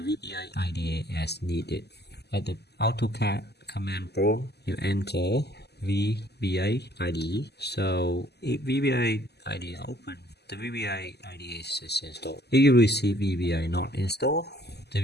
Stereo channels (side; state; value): right; late; 0.48 ms